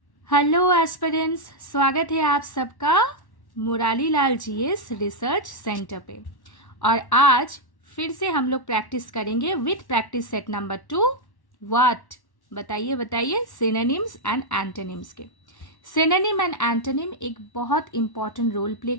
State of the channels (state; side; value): late; right; 1.1 ms